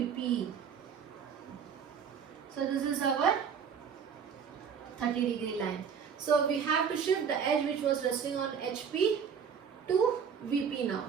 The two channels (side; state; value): left; quieter; 7.0 dB